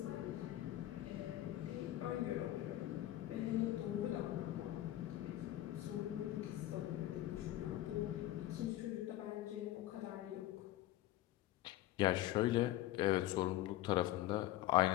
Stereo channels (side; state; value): right; quieter; 14.6 dB